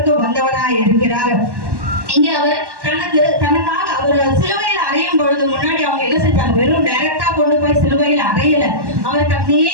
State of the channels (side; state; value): left; late; 1.1 ms